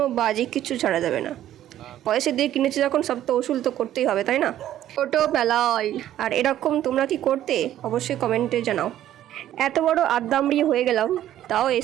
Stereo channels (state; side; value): quieter; left; 12.3 dB